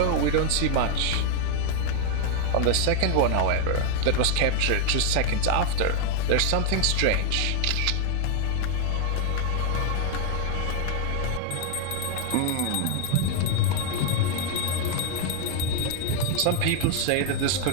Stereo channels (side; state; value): both; different; correlation 0.00